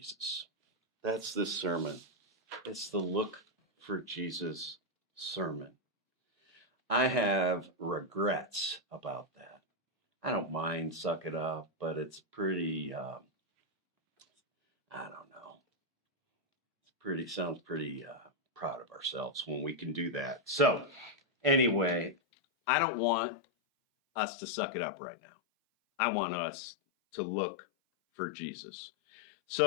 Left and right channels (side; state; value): right; drops out; at 22.2 s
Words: That's this sermon. It's the Look for Jesus sermon. I have regrets about that. I don't mind suck it up, but it's pretty, I don't know. Sounds pretty proud of ourselves when we can do that. So anyway, I don't want us to suck it up right now. I want us to look for Jesus.